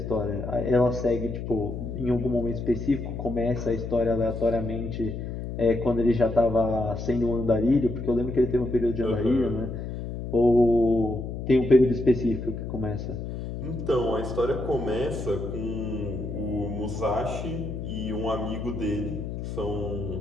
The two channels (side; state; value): left; noise; hum, 6 dB below the sound